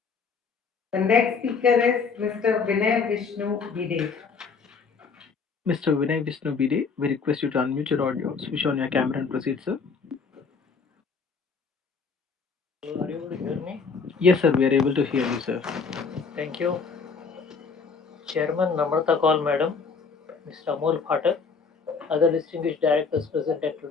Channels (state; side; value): quieter; right; 5.2 dB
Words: The next speaker is Mr. Vinay Vishnu Bide. Mr. Vinay Vishnu Bide, we request you to unmute your audio, switch on your camera and proceed, sir. Are you able to hear me? Yes, sir, we are able to hear you, sir. Thank you. Chairman Namrata Kaul Madam, Mr. Amol Phatak, other distinguished directors present at